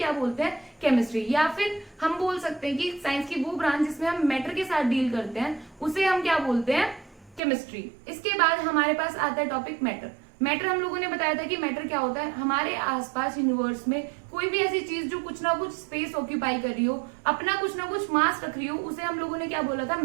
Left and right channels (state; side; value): drops out; left; at 7.4 s